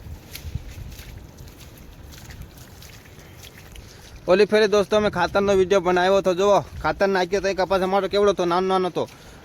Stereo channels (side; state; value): both; identical; correlation 1.00